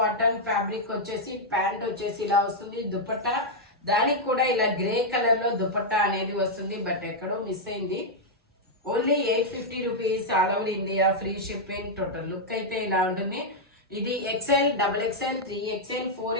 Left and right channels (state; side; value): normal; both; correlation -0.04